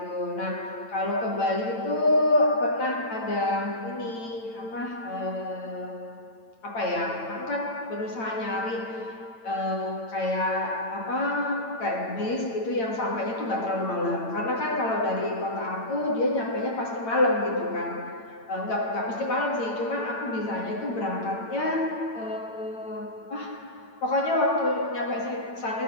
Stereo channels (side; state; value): right; late; 8.9 ms